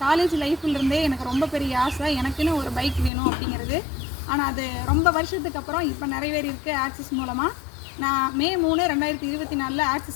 காலேஜ் லைஃப்லேருந்தே எனக்கு ரொம்ப பெரிய ஆசை, எனக்குன்னு ஒரு பைக் வேணும் அப்படிங்கிறது. ஆனால் அது ரொம்ப வருஷத்துக்கு அப்புறம் இப்போ நிறைவேறியிருக்கு ஆக்சிஸ் மூலமாக. நான் மே 3, 2024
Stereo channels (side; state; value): right; drops out; at 3.1 s